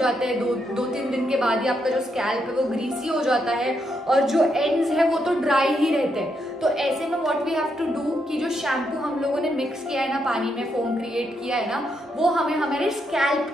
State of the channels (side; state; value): both; normal; correlation 0.79